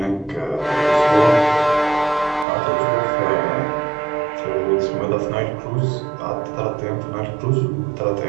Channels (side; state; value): left; drops out; at 2.5 s